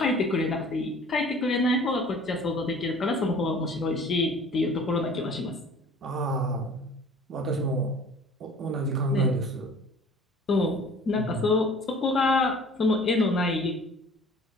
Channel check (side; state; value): both; normal; correlation 0.48